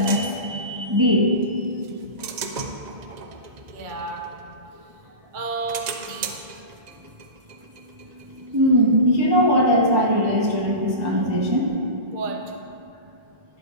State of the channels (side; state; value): left; late; 1.9 ms